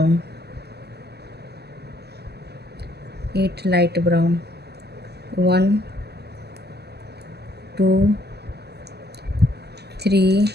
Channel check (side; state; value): left; late; 0.47 ms